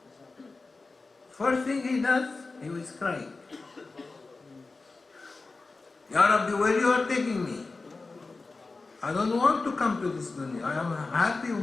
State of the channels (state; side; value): quieter; right; 3.7 dB